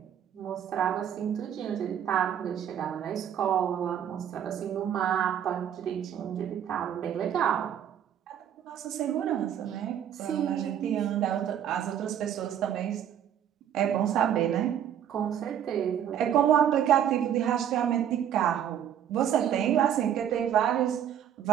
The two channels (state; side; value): quieter; left; 9.7 dB